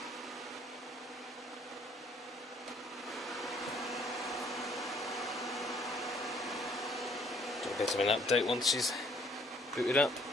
Do a bit of an update once she's booted up.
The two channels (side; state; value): both; normal; correlation 0.62